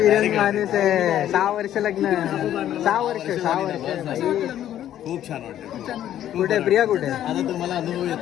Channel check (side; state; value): right; quieter; 11.6 dB